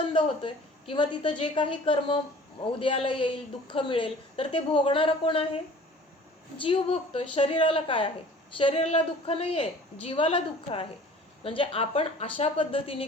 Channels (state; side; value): normal; both; correlation 0.48